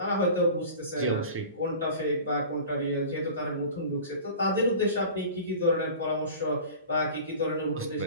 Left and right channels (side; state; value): both; inverted; correlation -0.39